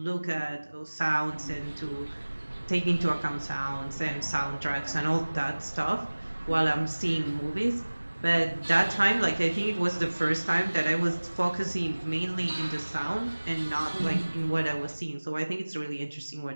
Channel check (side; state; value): both; inverted; correlation -1.00